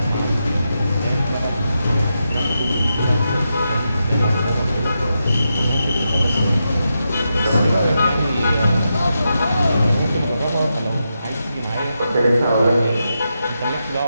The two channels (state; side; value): inverted; both; correlation -0.86